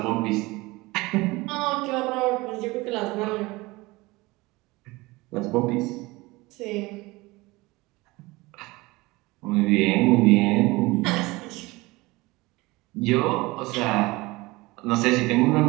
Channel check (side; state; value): left; quieter; 21.9 dB